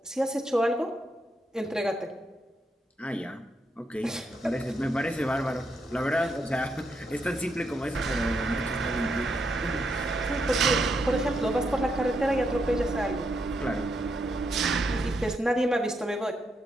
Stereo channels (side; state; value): both; normal; correlation 0.80